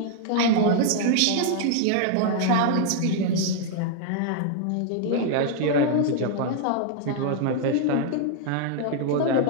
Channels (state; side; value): different; both; correlation 0.00